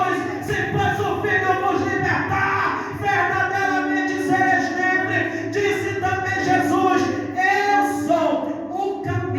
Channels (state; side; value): identical; both; correlation 1.00